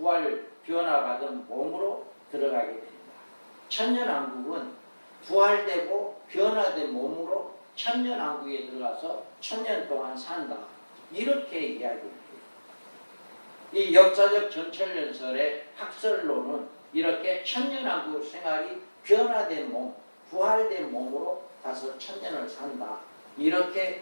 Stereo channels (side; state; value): both; inverted; correlation -1.00